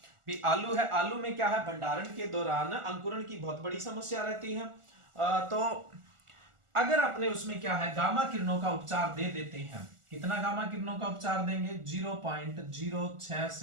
आलू है, आलू में क्या है, भंडारण के दौरान अंकुरण की बहुत बड़ी समस्या रहती है। तो अगर अपने उसमें क्या है, गामा किरणों का उपचार दे देते हैं, कितना गामा किरणों का उपचार देंगे, 0.06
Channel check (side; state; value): left; late; 1.4 ms